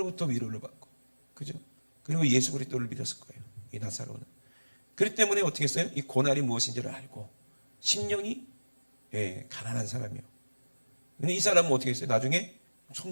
위로를 받고, 그죠? 그리고 예수 그리스도를 믿었을 거예요. 이 나사로는. 그렇기 때문에 어떻게 했어요? 이 고난이 무엇인지를 알고 심령이 가난한 사람이요. 근데 이 사람은 어떻게 했어요? 나중에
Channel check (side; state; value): both; inverted; correlation -1.00